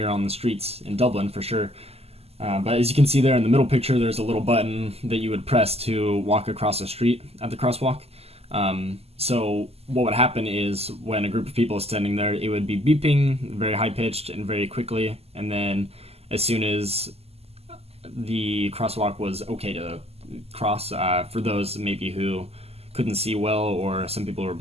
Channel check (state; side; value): late; left; 0.29 ms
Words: were on the streets in Dublin, for sure. But as you can see there in the middle picture, there's a little button that you would press to walk across the street at the crosswalk. So what would happen is when a group of people is standing there, it would be beeping very high-pitched and very quickly, and then as soon as the crosswalk was okay to cross, for those maybe who couldn't see well, or some people were